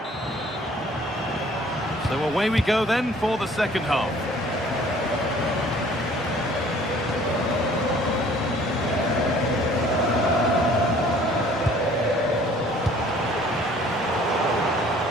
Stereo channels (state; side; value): normal; both; correlation 0.54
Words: So away we go then for the second half.